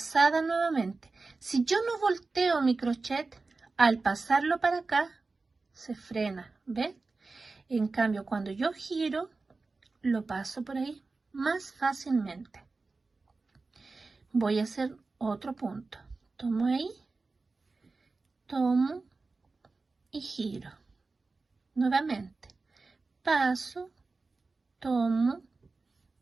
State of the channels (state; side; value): quieter; left; 3.8 dB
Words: nuevamente. Si yo no volteo mi crochet, al pasarlo para acá, se frena. ¿Ven? En cambio, cuando yo giro, lo paso por ahí más fácilmente. Voy a hacer otro punto. Tomo ahí, tomo y giro. Nuevamente. Paso, tomo